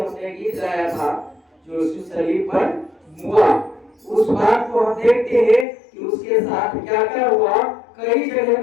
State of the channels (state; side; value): drops out; right; at 5.7 s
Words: गीत गाया था, जो उस सलीब पर हुआ, उस बात को हम देखते हैं कि उसके साथ क्या क्या हुआ। कई जगह